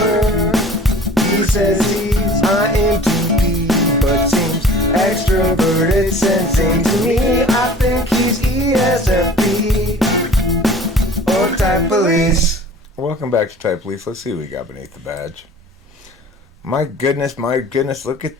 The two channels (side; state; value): both; normal; correlation 0.45